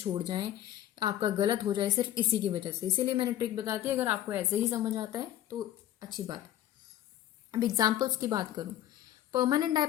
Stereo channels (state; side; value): quieter; right; 12.6 dB